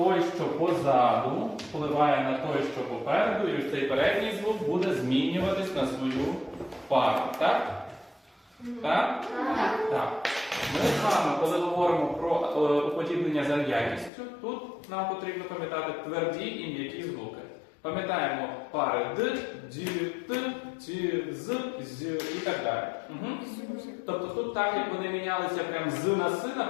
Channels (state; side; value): drops out; right; at 14.1 s